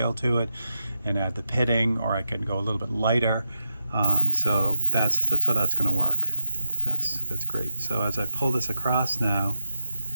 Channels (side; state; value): both; inverted; correlation -0.88